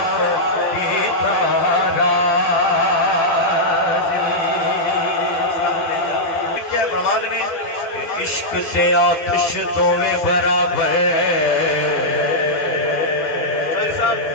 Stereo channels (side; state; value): right; late; 12 ms